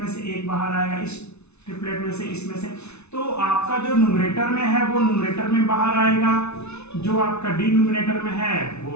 से एक बाहर आएगा, इस ट्रिपलेट में से इसमें से, तो आपका जो न्यूमरेटर में है वो न्यूमरेटर में बाहर आएगा, जो आपका डिनोमिनेटर में है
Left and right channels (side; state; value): right; late; 0.81 ms